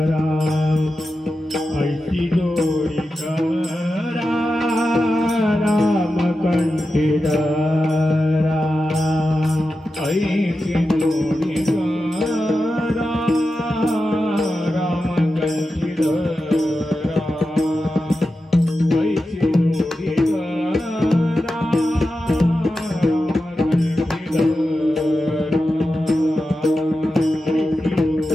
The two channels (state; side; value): normal; both; correlation 0.91